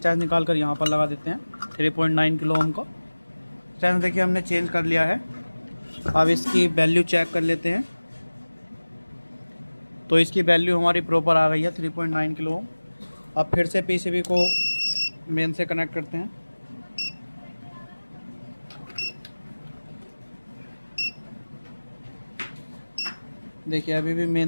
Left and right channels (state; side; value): inverted; both; correlation -1.00